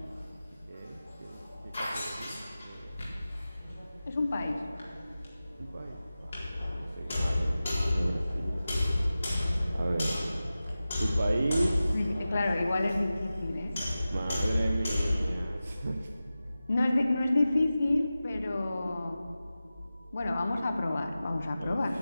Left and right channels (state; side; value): inverted; both; correlation -0.95